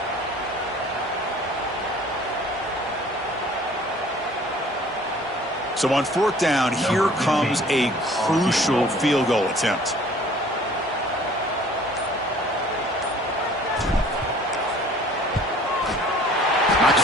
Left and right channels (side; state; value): both; normal; correlation 0.52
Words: So on fourth down, here comes a crucial field goal attempt.